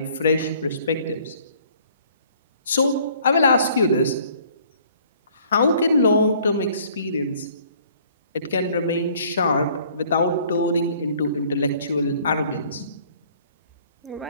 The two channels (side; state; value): both; inverted; correlation -0.58